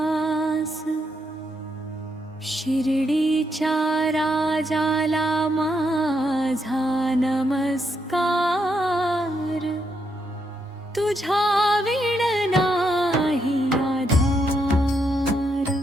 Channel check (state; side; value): normal; both; correlation 0.79